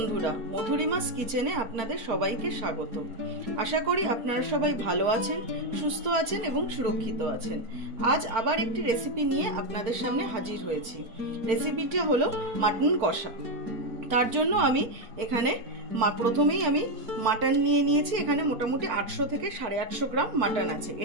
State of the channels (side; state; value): left; late; 4.4 ms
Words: মধুরিমাস কিচেনে আপনাদের সবাইকে স্বাগত। আশা করি আপনারা সবাই ভালো আছেন, সুস্থ আছেন এবং সুরক্ষিত আছেন। আজ আবার একটি রেসিপি নিয়ে আপনাদের সামনে হাজির হয়েছি। রেসিপিটা হলো মাটন কষা। তার জন্য আমি এখানে প্রথমেই আমি মাটন নিয়ে নিয়েছি। এখানে মোটামুটি 800 থেকে 850 গ্রাম মাটন আছে।